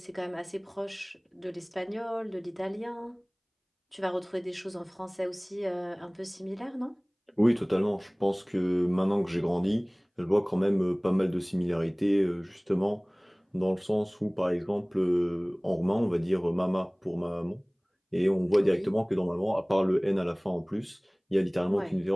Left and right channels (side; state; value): both; identical; correlation 1.00